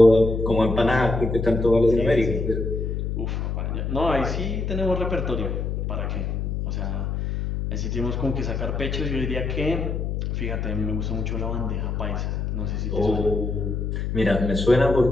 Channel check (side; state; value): left; noise; hum, 2 dB below the sound